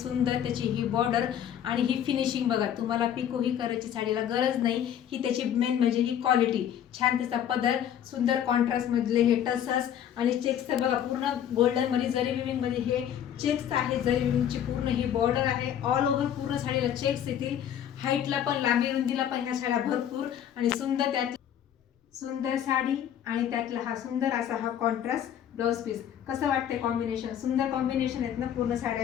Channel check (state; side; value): quieter; right; 9.9 dB